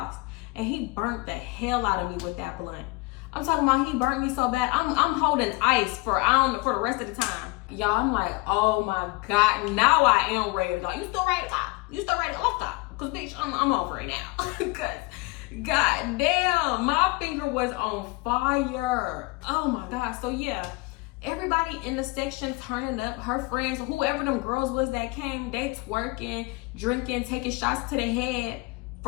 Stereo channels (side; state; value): right; quieter; 24.8 dB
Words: and he burnt the hell out of me with that blunt. I'm talking about he burnt me so bad. I'm holding ice for the rest of the time. Y'all, I'm like, oh my God, now I am ready to go. You still ready to go? Let's go. Cause bitch, I'm over it now. Cause God damn, my finger was on fire. Oh my God. So yeah, everybody in the section turning up, her friends, whoever them girls was that came, they twerking, drinking, taking shots to the head